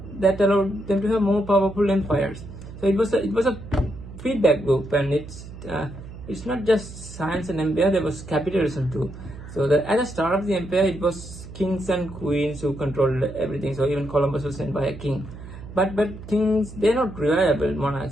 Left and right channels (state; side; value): noise; right; hum, 14 dB below the sound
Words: that allowed them to have more powerful empires. So it was a feedback loop, and it's not just science and empire. There was capitalism too. So at the start of the empire, it was kings and queens who controlled everything. So even Columbus was sent by a king. But kings, they're not reliable